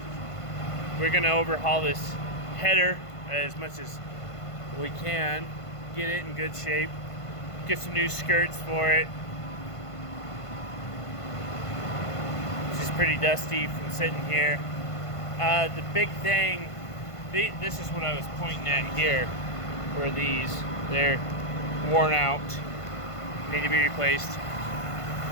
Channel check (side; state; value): right; late; 1.5 ms